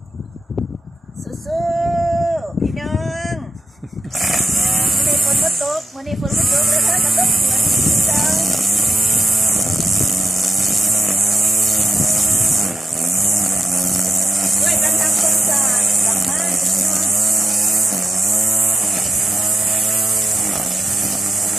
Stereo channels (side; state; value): both; normal; correlation 0.91